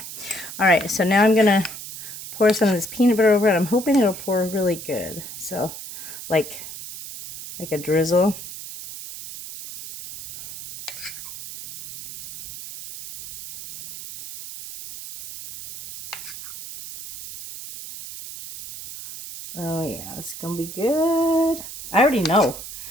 right, so now I'm going to pour some of this peanut butter over it. I'm hoping it'll pour really good. So, like a drizzle. Oh yeah, it's gonna be good. I already know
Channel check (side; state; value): right; noise; hiss, 11 dB below the sound